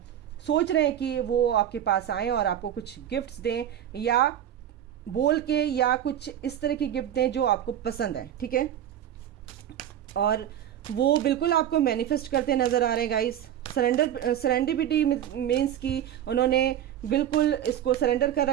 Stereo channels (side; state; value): left; quieter; 10.7 dB